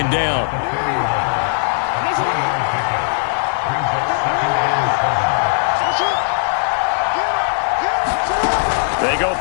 down. They go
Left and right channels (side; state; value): right; silent; digital silence